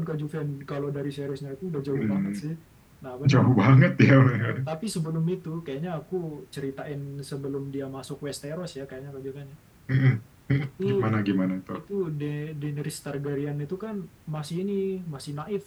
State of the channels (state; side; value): identical; both; correlation 1.00